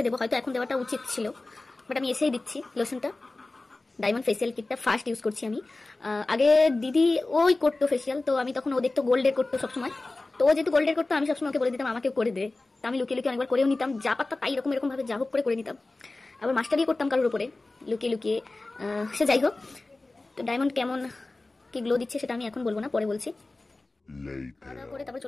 দেবো। হয়তো এখন দেওয়াটা উচিত ছিল, বাট আমি এসেই দিচ্ছি লোশনটা। ডায়মন্ড ফেসিয়াল কিটটা ফার্স্ট ইউজ করছি আমি। আগে দিদি ওই করতো ফেসিয়াল, তো আমি তখন ও দেখতো গোল্ডের করতো সবসময়। তো ও যেহেতু গোল্ডের করতো, আমি সবসময় ওকে বলে দিতাম আমাকেও করে দে। তো আমি লুকিয়ে লুকিয়ে অনেকবার করেও নিতাম, যা পারতাম তাই এরকম ভাবে যা হোক করে নিতাম। আবার মাস্টার দিয়ে করতাম কারোর উপরে লুকিয়ে লুকিয়ে। সে যাই হোক, তো ডায়মন্ড কেমন কি গ্লো দিচ্ছে সেটা আমি এখন বলবো না, পরে বলছি। করে তারপর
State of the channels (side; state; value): right; quieter; 3.1 dB